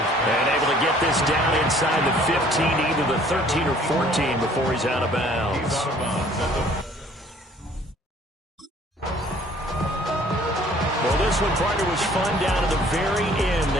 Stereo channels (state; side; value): normal; both; correlation 0.56